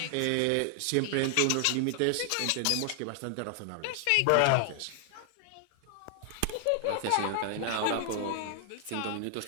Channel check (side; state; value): both; different; correlation 0.00